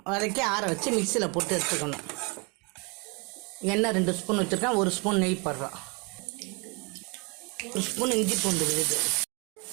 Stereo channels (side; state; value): left; quieter; 30.8 dB